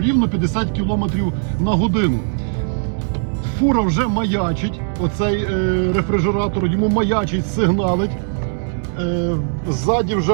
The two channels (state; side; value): silent; left; 64 dB below the other